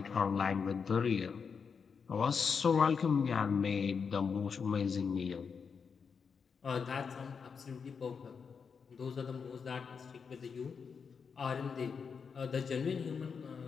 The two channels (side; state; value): right; quieter; 6.0 dB